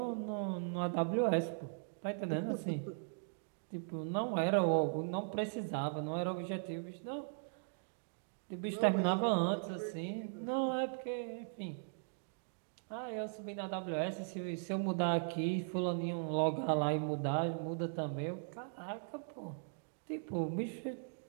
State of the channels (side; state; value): left; silent; digital silence